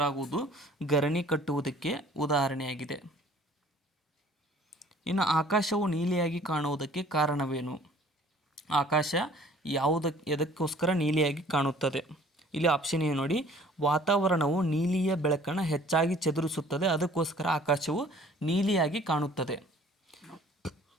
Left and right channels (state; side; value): normal; both; correlation 0.53